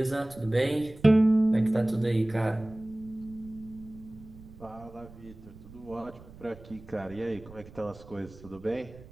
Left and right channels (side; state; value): right; noise; rumble, 19 dB below the sound